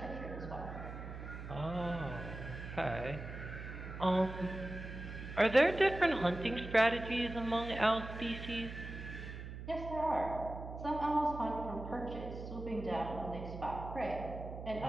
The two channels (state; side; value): noise; right; hum, 9 dB below the sound